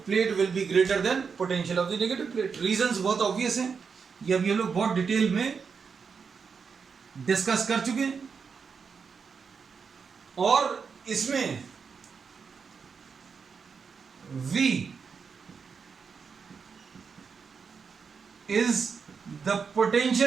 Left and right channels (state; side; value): quieter; left; 5.8 dB